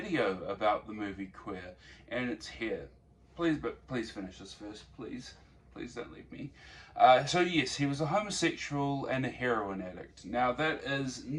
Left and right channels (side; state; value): both; identical; correlation 1.00